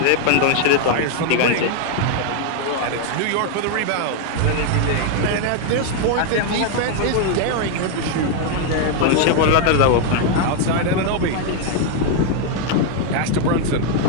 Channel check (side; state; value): both; different; correlation 0.01